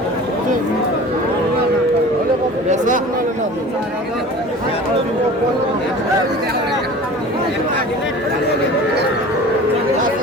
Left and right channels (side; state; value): both; normal; correlation 0.40